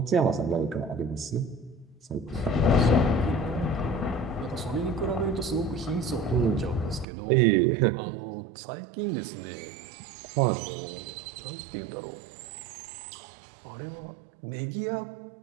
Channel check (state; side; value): drops out; left; at 7.1 s